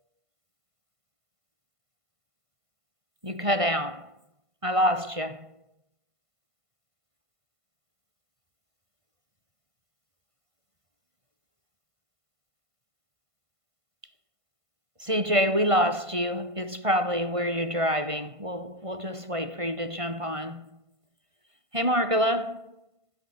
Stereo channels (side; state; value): left; late; 1.5 ms